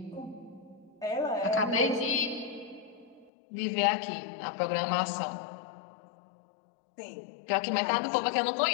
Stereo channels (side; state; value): right; drops out; at 3.3 s